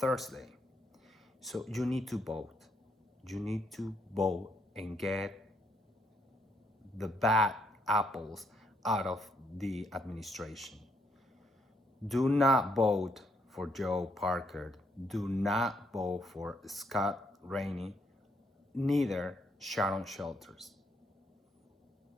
So you need to vote. You need to vote and get the bad apples out of the administration. Do not vote for Joe Parker. Do not vote for Scott Rainey, neither Sharon Shelters.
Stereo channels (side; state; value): both; normal; correlation 0.73